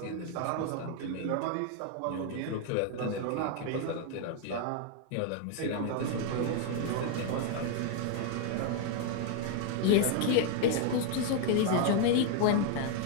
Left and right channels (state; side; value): different; both; correlation 0.00